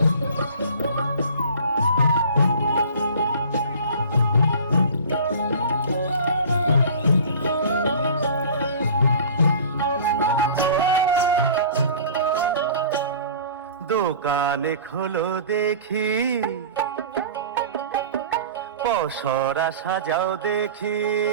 দোকানে খোলো দেখি, পসরা সাজাও দেখি,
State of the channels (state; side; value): inverted; both; correlation -0.42